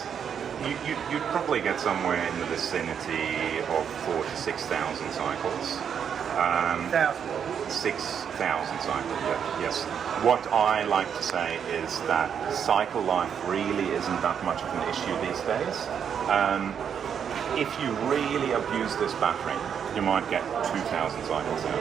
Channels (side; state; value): left; quieter; 7.8 dB